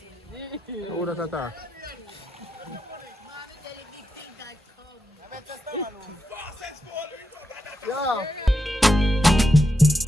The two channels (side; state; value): both; normal; correlation 0.86